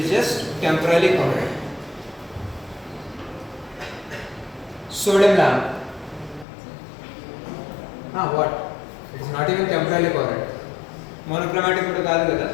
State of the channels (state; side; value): drops out; right; at 6.5 s